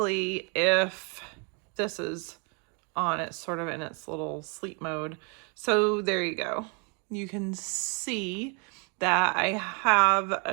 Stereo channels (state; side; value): quieter; left; 35.1 dB